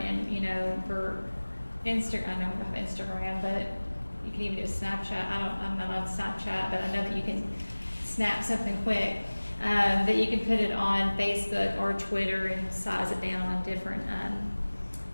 and for Instagram, I know we don't have Instagram, but you can even do a Snapchat. I'm not on Snapchat, but I know that you can snap something quick, that you can put it on Facebook or Twitter and size it down on different,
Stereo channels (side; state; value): both; inverted; correlation -1.00